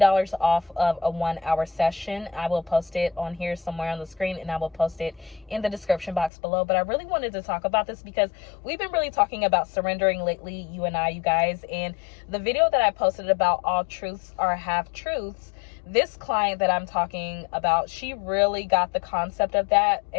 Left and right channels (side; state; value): right; drops out; at 6.3 s